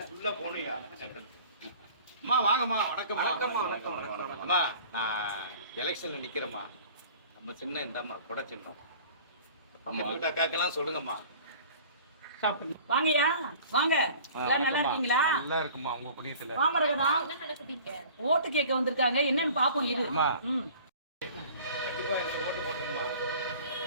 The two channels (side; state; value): both; inverted; correlation -0.46